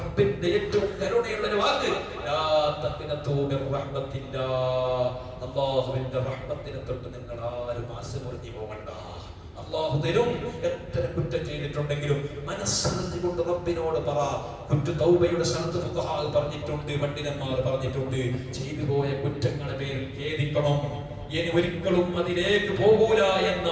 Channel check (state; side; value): identical; both; correlation 1.00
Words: ഏറ്റവും കരുണയുള്ള ഒരു വാക്ക്, ലാ തഖ്നതു മിർ റഹ്മത്തില്ലാഹ്. അല്ലാഹുവിന്റെ റഹ്മത്തിനെ തൊട്ട് നിങ്ങൾ ആരും ആശമുറിഞ്ഞു പോകണ്ട. അല്ലാഹു തരും. എത്ര കുറ്റം ചെയ്തിട്ടുണ്ടെങ്കിലും മനസ്സറിഞ്ഞുകൊണ്ട് റബ്ബിനോട് പറ. കുറ്റ തൗബയുടെ ശർത്ത് ഫുഖഹാ പറഞ്ഞിട്ടുണ്ട്, പണ്ഡിതന്മാർ പറഞ്ഞിട്ടുണ്ട്. ചെയ്തു പോയ കുറ്റങ്ങളുടെ പേരിൽ ഖേദിക്കണം. ഇനി ഒരിക്കലും അതിലേക്ക് പോകൂല